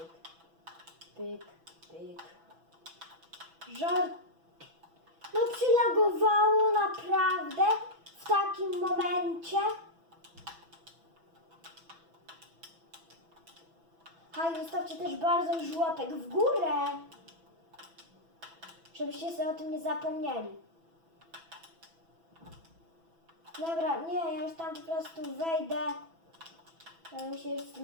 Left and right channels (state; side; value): late; left; 6.0 ms